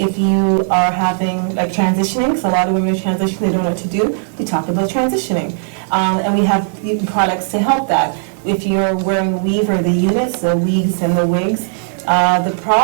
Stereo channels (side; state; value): left; silent; digital silence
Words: you are having, transitioning, because a lot of women are transitioning, they don't know what to do, we talk about transitioning. And we have products to help that. If you're wearing weave or the units, the wigs and the wigs, the